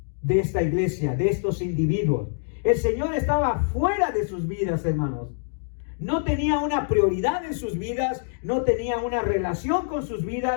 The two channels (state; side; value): silent; right; digital silence